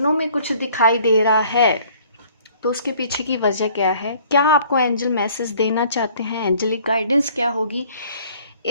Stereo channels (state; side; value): inverted; both; correlation -0.56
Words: में कुछ दिखाई दे रहा है तो उसके पीछे की वजह क्या है, क्या आपको एंजल मैसेज देना चाहते हैं, एंजलिक गाइडेंस क्या होगी।